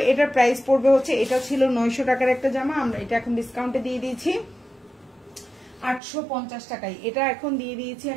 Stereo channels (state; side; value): drops out; left; at 6.0 s